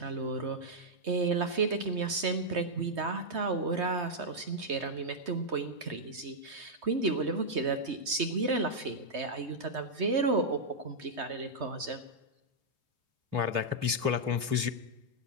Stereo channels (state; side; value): late; left; 3.2 ms